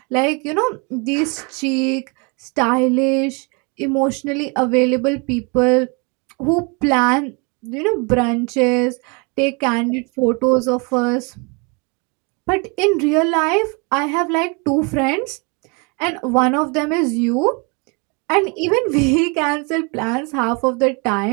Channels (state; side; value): quieter; left; 31.7 dB